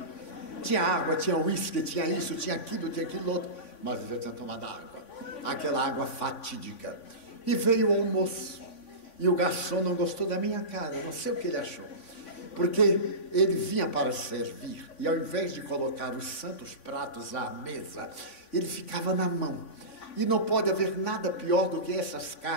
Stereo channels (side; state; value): right; late; 3.5 ms